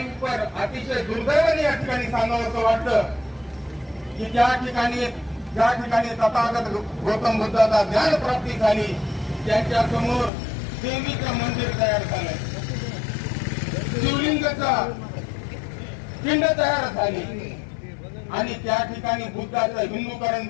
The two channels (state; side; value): drops out; right; at 10.3 s